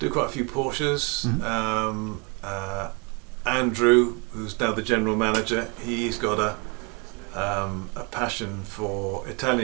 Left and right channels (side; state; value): left; quieter; 31.1 dB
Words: quite a few Porsches. Andrew, who's now the general manager, he's got a passion for